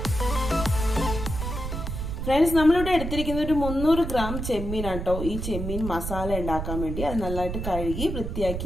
ഫ്രണ്ട്സ്, നമ്മളിവിടെ എടുത്തിരിക്കുന്ന ഒരു 300 ഗ്രാം ചെമ്മീനാണ് കേട്ടോ. ഈ ചെമ്മീൻ മസാല ഉണ്ടാക്കാൻ വേണ്ടി അത് നല്ലതായിട്ട് കഴുകി വൃത്തിയാക്കി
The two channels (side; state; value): right; noise; rumble, 5 dB below the sound